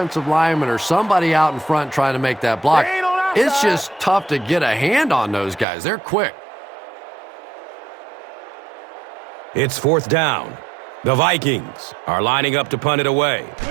lineman or somebody out in front trying to make that block, it's just tough to get a hand on those guys. They're quick. It's fourth down. The Vikings are lining up to punt it away.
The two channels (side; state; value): left; drops out; at 5.7 s